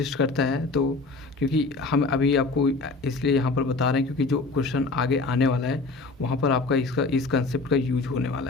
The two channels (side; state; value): right; quieter; 3.6 dB